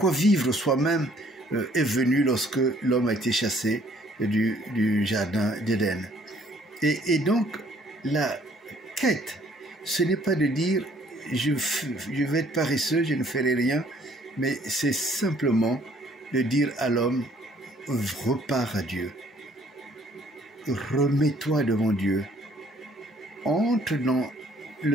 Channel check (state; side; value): normal; both; correlation 0.61